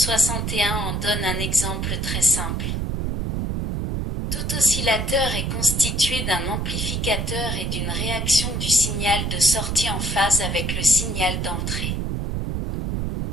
en donne un exemple très simple. Tout oscillateur est constitué d'un amplificateur et d'une réaction du signal de sortie en phase avec le signal d'entrée.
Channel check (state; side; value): noise; right; rumble, 1 dB below the sound